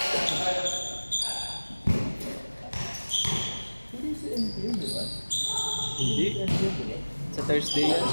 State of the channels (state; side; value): inverted; both; correlation -1.00